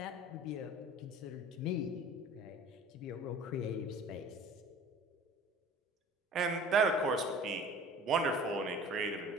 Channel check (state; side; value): normal; both; correlation 0.44